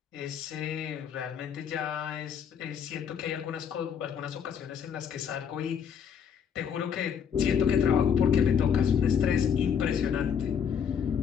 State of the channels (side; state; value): right; quieter; 7.5 dB